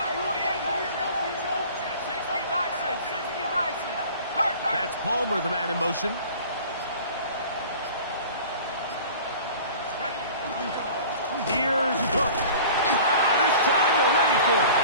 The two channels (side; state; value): both; inverted; correlation -0.43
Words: That's Palmer, the man in motion. Here's Cook. This time they're ready for it.